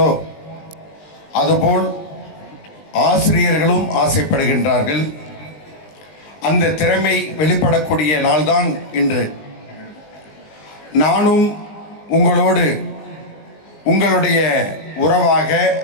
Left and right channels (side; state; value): right; late; 20 ms